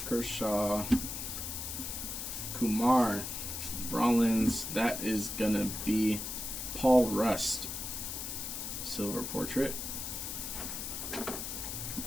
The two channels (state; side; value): noise; left; hiss, 5 dB below the sound